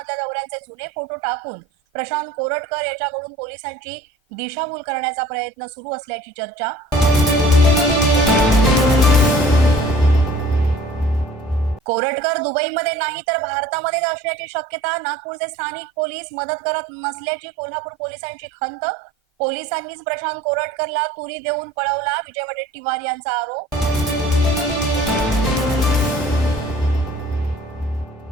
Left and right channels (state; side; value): normal; both; correlation 0.49